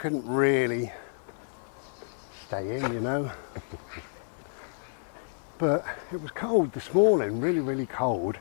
really stay in, you know. But it was cold this morning, really, really cold.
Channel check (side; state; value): right; silent; 58 dB below the other